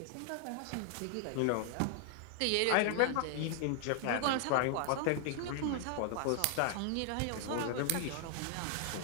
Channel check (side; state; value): both; different; correlation 0.00